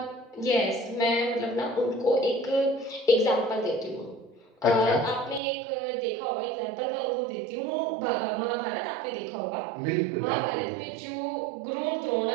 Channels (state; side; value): drops out; left; at 5.4 s